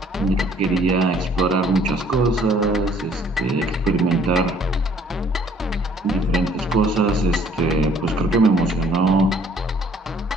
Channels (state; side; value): normal; both; correlation 0.59